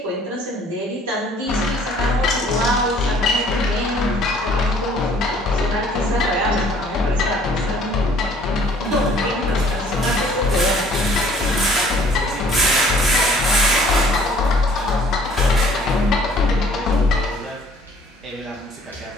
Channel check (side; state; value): both; normal; correlation 0.56